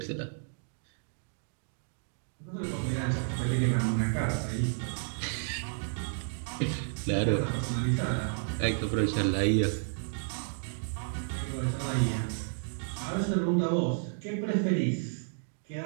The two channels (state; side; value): silent; left; digital silence